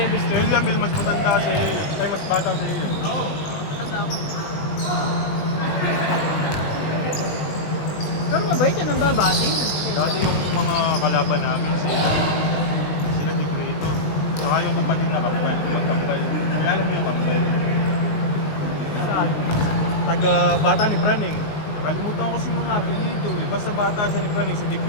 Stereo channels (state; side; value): late; right; 20 ms